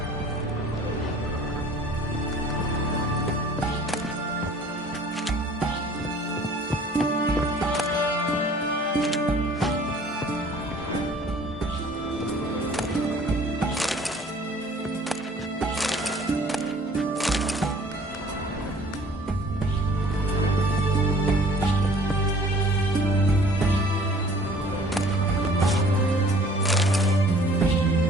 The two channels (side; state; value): both; normal; correlation 0.52